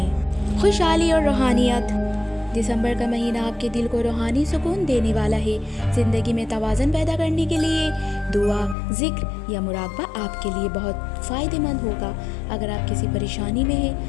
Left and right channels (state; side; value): drops out; right; at 8.8 s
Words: خوشحالی اور روحانیت۔ دسمبر کا مہینہ آپ کے دل کو روحانی سکون دینے والا ہے۔ زندگی میں توازن پیدا کرنے کے لیے دعا، ذکر یا مراقبہ آپ کے لیے بہت فائدہ مند ہوگا۔ اگر آپ کسی پریشانی میں ہیں